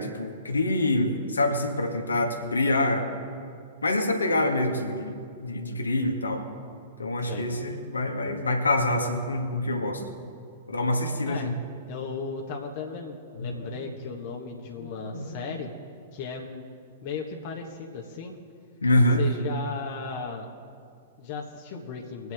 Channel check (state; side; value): inverted; both; correlation -0.66